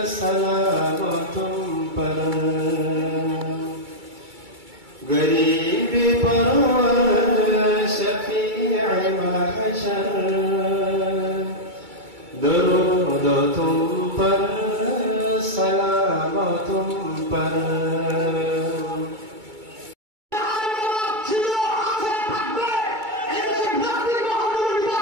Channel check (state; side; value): late; left; 2.3 ms